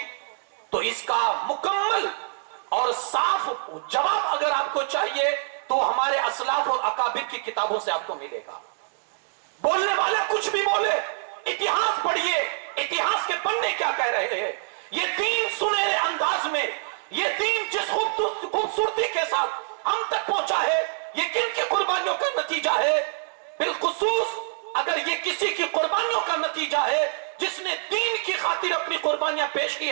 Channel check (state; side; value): silent; left; digital silence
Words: تو اس کا مکمل اور صاف جواب اگر آپ کو چاہیے تو ہمارے اسلاف اور اکابر کی کتابوں سے آپ کو ملے گا. بولنے والا کچھ بھی بولے اتہاس پڑھیے اتہاس کے پڑھنے کیا کہہ رہے ہیں. یہ دین سنہرے انداز میں یہ دین جس خوبصورتی کے ساتھ ہم تک پہنچا ہے یہ کن کی قربانیوں کا نتیجہ ہے. بالخصوص اگر یہ کسی کی قربانیوں کا نتیجہ ہے جس نے دین کی خاطر اپنی قربانیاں پیش کی